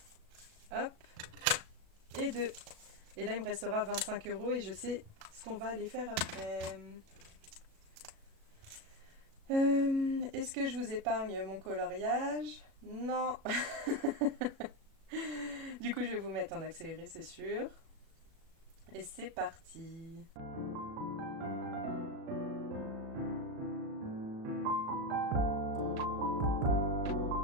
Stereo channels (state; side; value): late; left; 37 ms